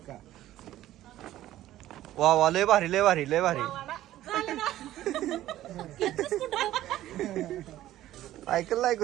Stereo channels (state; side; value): quieter; left; 14.0 dB